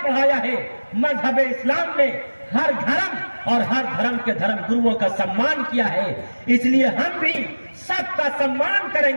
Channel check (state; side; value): inverted; both; correlation -1.00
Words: पढ़ाया है, मजहब इस्लाम ने हर धर्म और हर धर्म के धर्म गुरुओं का सम्मान किया है। इसलिए हम भी सबका सम्मान